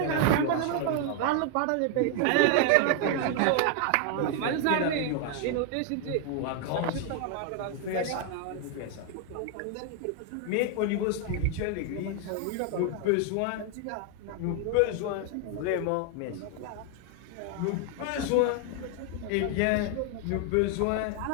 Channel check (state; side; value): different; both; correlation 0.01